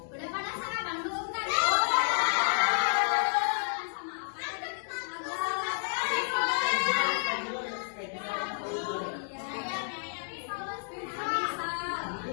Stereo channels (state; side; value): silent; right; 57 dB below the other